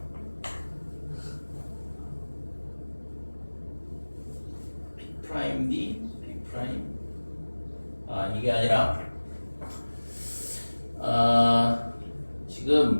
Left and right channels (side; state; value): both; inverted; correlation -1.00